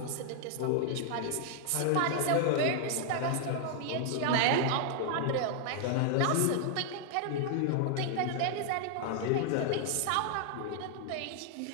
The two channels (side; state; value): both; different; correlation 0.00